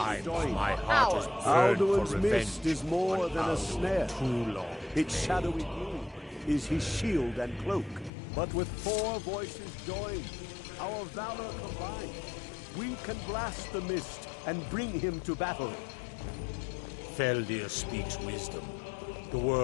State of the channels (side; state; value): right; drops out; at 8.1 s